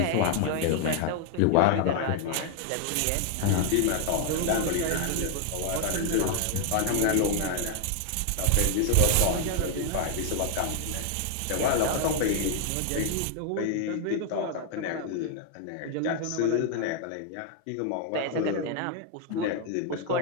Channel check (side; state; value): both; different; correlation 0.00